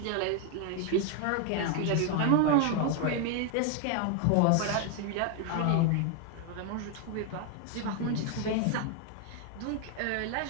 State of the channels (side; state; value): both; different; correlation 0.00